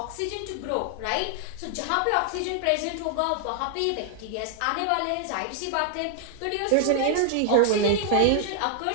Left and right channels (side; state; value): both; different; correlation 0.00